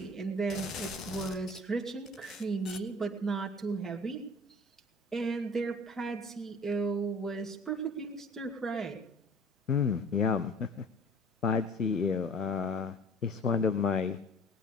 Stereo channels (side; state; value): both; normal; correlation 0.47